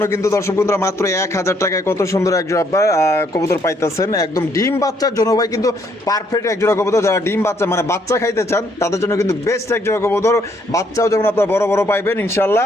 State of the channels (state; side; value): normal; both; correlation 0.69